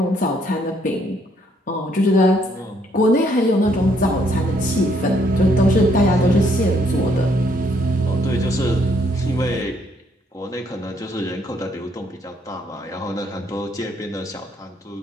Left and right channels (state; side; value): normal; both; correlation 0.69